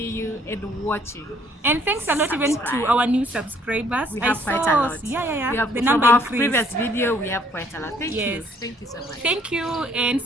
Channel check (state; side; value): normal; both; correlation 0.63